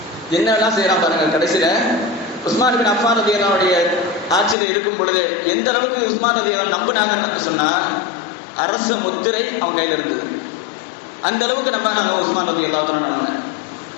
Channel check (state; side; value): drops out; right; at 4.5 s